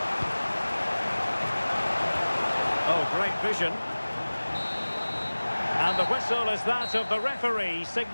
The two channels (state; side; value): inverted; both; correlation -1.00